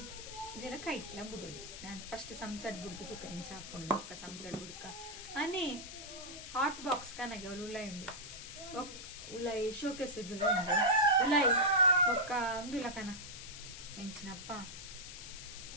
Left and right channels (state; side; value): noise; left; hiss, 11 dB below the sound